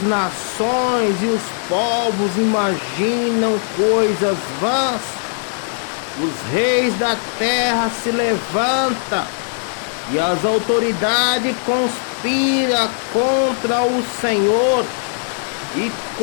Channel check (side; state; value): right; silent; 67 dB below the other